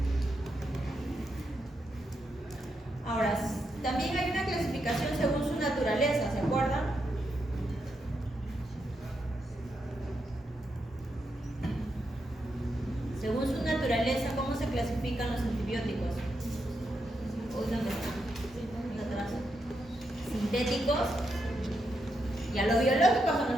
Ahora, también hay una clasificación según su naturaleza, ¿se acuerdan? Según su naturaleza, ¿cómo se clasifican los antibióticos? ¿Dónde están? Sintéticos. Ya los biológicos son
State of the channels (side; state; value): both; normal; correlation 0.83